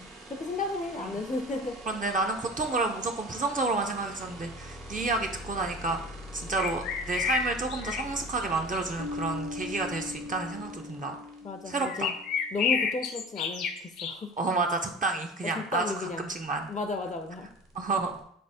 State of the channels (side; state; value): both; normal; correlation 0.38